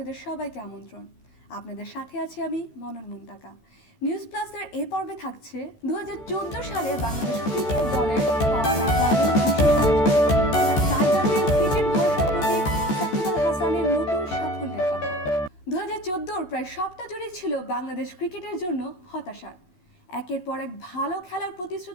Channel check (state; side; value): late; right; 14 ms